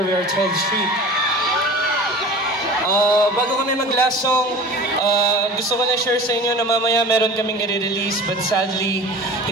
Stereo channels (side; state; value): both; normal; correlation 0.38